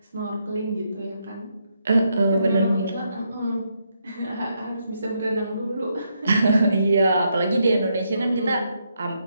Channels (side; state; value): both; inverted; correlation -0.79